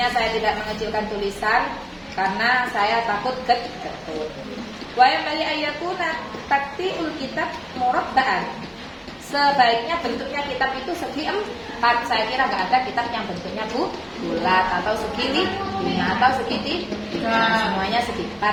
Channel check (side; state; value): both; identical; correlation 1.00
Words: saya tidak mengecilkan tulisan karena saya takut getun. Wa yamali ayakuna taktiul kitab murabba'an. Sebaiknya bentuknya kitab itu segi 4. Saya kira nggak ada kitab yang bentuknya bulat atau segi 5 atau segi 3. Semuanya segi